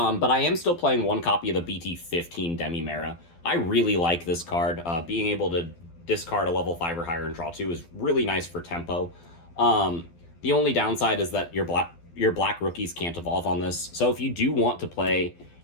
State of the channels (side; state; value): right; late; 12 ms